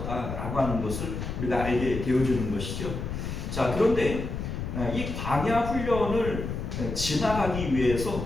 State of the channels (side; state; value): left; noise; rumble, 5 dB below the sound